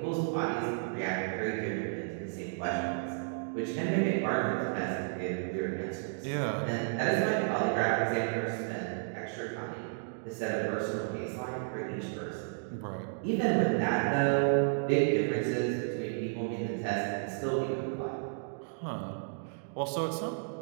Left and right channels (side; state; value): left; silent; digital silence